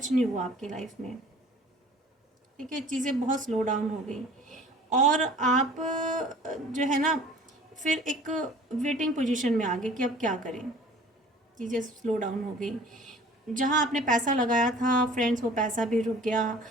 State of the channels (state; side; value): normal; both; correlation 0.48